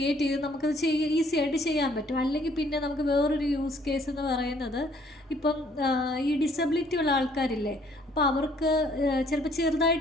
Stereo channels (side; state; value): both; normal; correlation 0.62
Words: ചെയ്ത് നമുക്കത് ഈസി ആയിട്ട് ചെയ്യാൻ പറ്റും. അല്ലെങ്കിൽ പിന്നെ നമുക്ക് വേറൊരു യൂസ് കേസ് എന്ന് പറയുന്നത്, ഇപ്പം ഈ ഡിസബിലിറ്റി ഉള്ള ആൾക്കാരില്ലേ, അപ്പോൾ അവർക്ക് ചിലപ്പോൾ